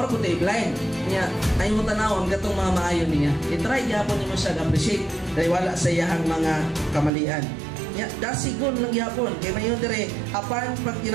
kung blind niya ay mo tanawon katong mga maayo niya. I-try gyapon nimo siya appreciate taliwala sa iyang mga kamalian. Ya, dasigon lang gyapon kay mayon dire apan pag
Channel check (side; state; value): left; drops out; at 7.1 s